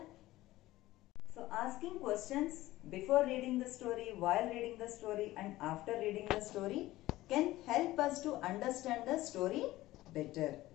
So asking questions before reading the story, while reading the story and after reading the story can help us to understand the story better.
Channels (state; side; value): quieter; right; 16.9 dB